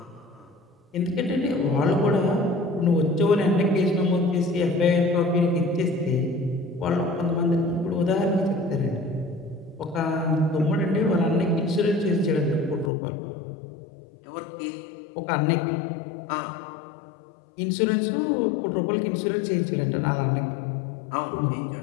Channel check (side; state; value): right; drops out; at 12.9 s